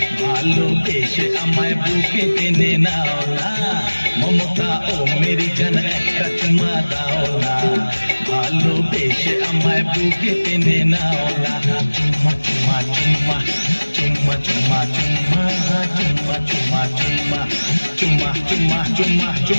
ভালোবেসে আমায় বুকে টেনে নাও না। মমতা ও মেরি জান একটা চুমা দাও না, ভালোবেসে আমায় বুকে টেনে নাও না। চুম্মা চুম্মা চুম্মা চুম্মা চুম্মা চুম্মা চুম্মা চুম্মা চুম্মা চুম্মা চুম্মা চুম্মা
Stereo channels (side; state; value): both; inverted; correlation -1.00